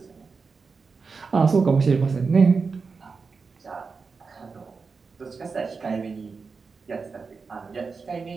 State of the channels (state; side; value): quieter; left; 4.8 dB